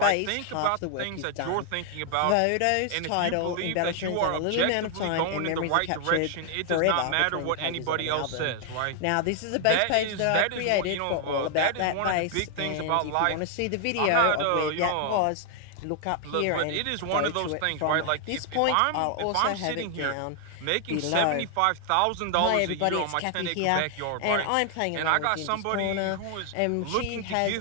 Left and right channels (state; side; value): different; both; correlation 0.00